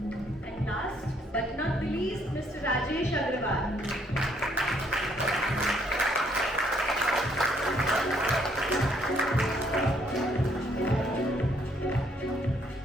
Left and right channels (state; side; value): normal; both; correlation 0.68